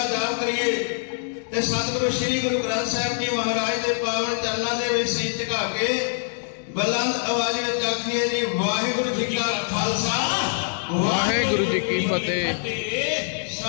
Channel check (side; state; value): right; silent; digital silence